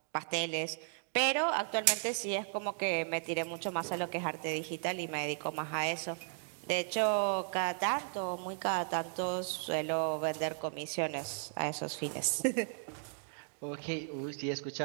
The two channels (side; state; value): left; silent; digital silence